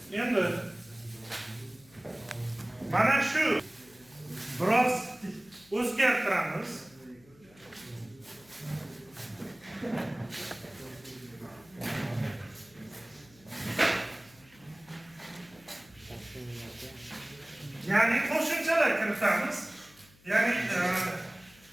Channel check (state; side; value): noise; left; hum, 27 dB below the sound